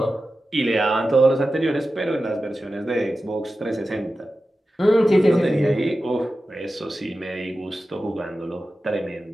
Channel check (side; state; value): both; normal; correlation 0.93